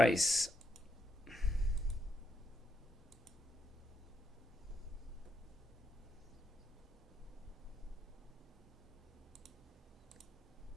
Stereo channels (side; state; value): both; normal; correlation 0.80